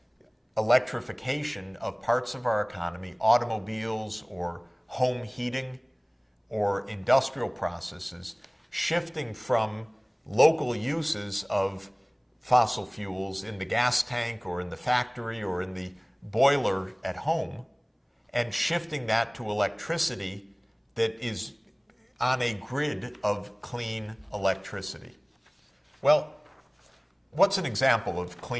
electrification of parts of our economy, automobiles or home heating or industrial processes, shifting from local uses of fossil fuels in the gas tank or in the factory or in the boiler at home, and shifting that to electricity that is on a grid of clean electricity. Well, what's an example of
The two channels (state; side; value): identical; both; correlation 1.00